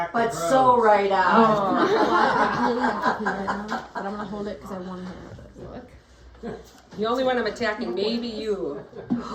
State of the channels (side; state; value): both; identical; correlation 1.00